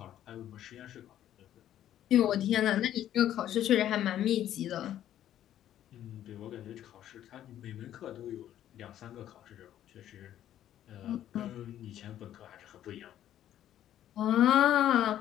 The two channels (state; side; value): quieter; right; 11.6 dB